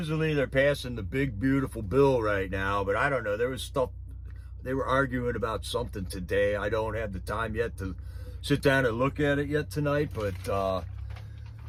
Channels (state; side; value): identical; both; correlation 1.00